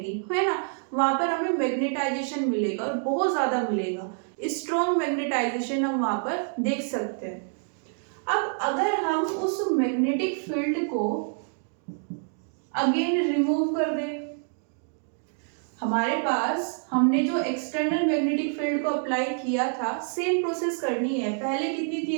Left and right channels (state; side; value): silent; left; 60 dB below the other